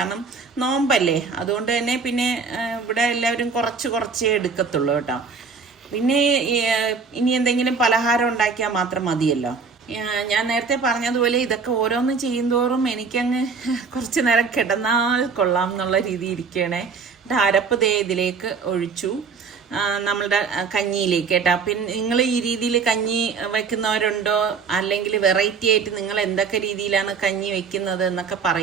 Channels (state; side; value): quieter; left; 5.3 dB